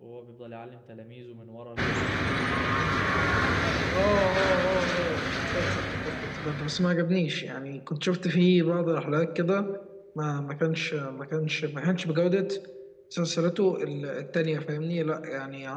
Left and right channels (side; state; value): both; identical; correlation 1.00